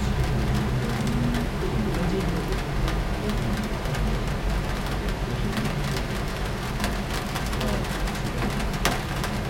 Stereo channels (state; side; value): identical; both; correlation 1.00